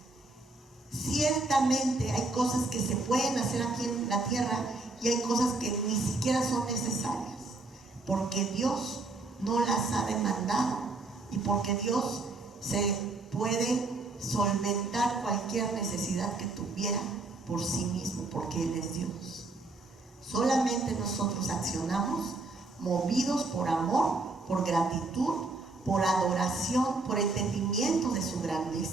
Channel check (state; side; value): quieter; left; 3.4 dB